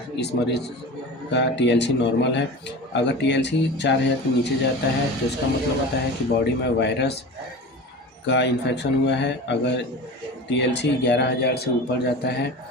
इस मरीज का टीएलसी नॉर्मल है। अगर टीएलसी 4000 के नीचे जाता है तो इसका मतलब होता है कि बॉडी में वायरस का इन्फेक्शन हुआ है। अगर टीएलसी 11000 से ऊपर जाता है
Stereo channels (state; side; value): normal; both; correlation 0.32